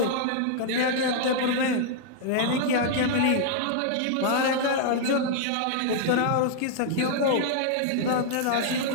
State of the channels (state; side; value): different; both; correlation -0.01